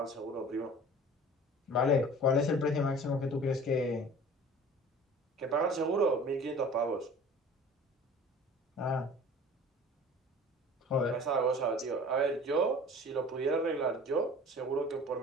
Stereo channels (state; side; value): normal; both; correlation 0.43